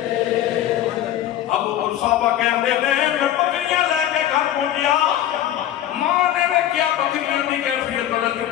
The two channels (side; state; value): right; quieter; 11.9 dB